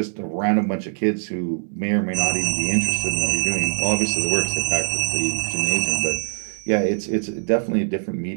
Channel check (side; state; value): left; silent; digital silence